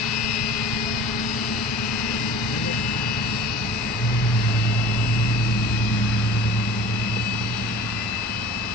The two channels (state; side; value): normal; both; correlation 0.43